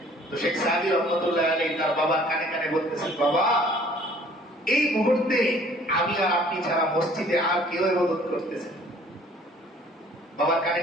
তো শেখ সাদি রহমতুল্লাহ আলাইহি তার বাবার কানে কানে বলতেছেন, বাবা, এই মুহূর্তে আমি আর আপনি ছাড়া মসজিদে আর কেউ ইবাদত করতেছে। বাবার কানে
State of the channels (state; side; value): normal; both; correlation 0.55